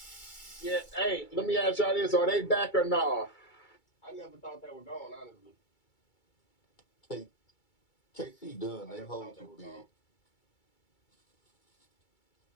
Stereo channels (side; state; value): right; late; 2.3 ms